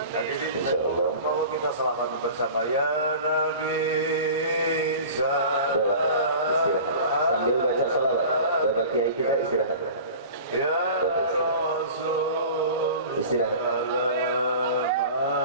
Hadirin, insyaallah bahwa kita selamat bersama ya Nabi. Istirahat sambil baca salawat. Bapak Kiai kita istirahat. Ya Rasul. Istirahat.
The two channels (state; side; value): inverted; both; correlation -0.38